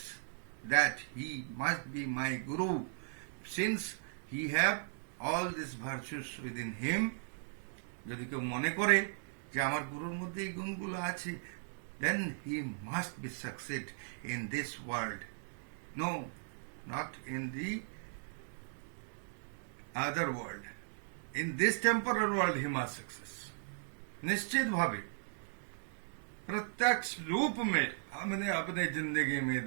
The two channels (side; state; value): left; silent; digital silence